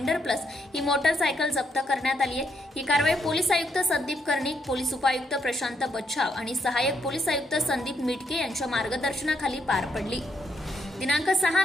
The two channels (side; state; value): both; normal; correlation 0.76